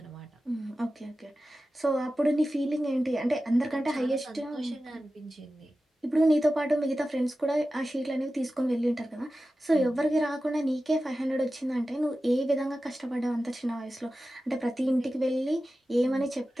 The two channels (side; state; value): both; normal; correlation 0.94